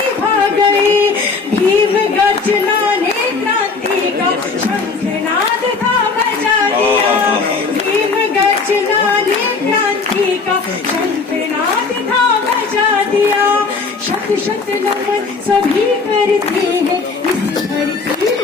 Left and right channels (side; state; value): right; quieter; 4.5 dB